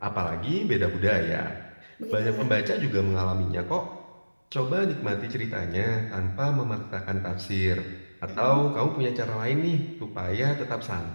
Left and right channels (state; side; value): inverted; both; correlation -1.00